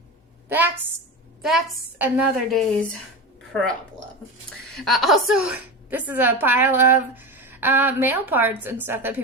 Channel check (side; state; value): both; normal; correlation 0.23